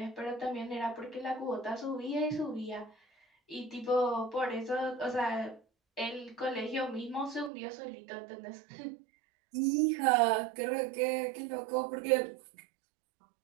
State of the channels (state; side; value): drops out; left; at 7.5 s